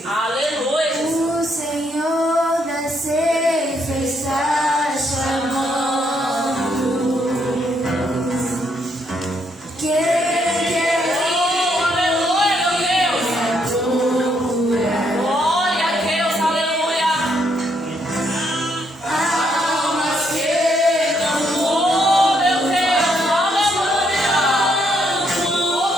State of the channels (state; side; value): normal; both; correlation 0.74